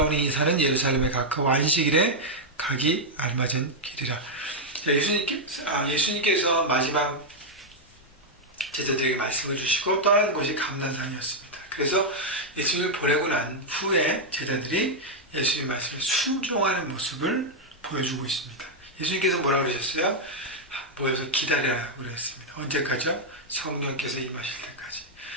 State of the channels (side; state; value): both; normal; correlation -0.02